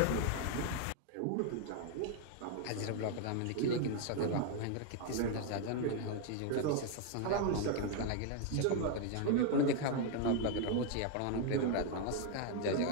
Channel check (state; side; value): different; both; correlation 0.00